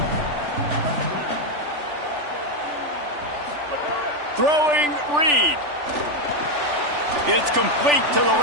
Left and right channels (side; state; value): left; late; 3.4 ms